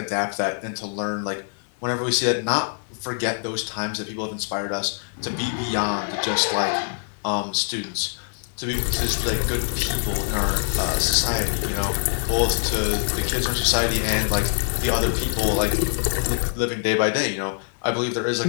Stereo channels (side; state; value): right; silent; 58 dB below the other